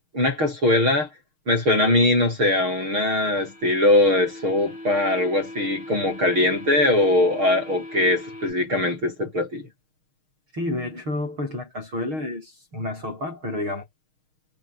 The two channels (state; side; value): late; left; 6.4 ms